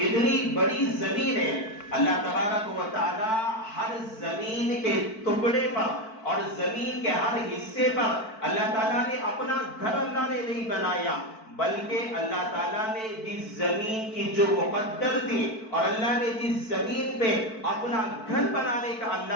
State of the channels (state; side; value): late; right; 4.5 ms